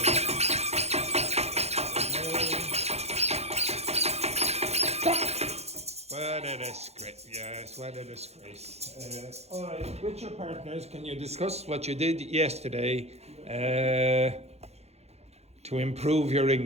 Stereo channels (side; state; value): left; late; 0.31 ms